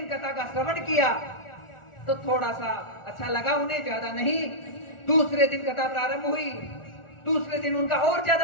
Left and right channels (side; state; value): right; late; 1.4 ms